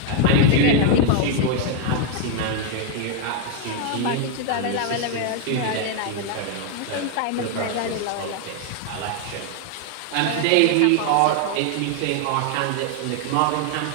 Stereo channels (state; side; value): different; both; correlation 0.00